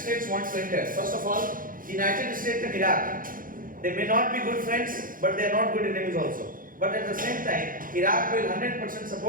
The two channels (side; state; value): left; late; 0.40 ms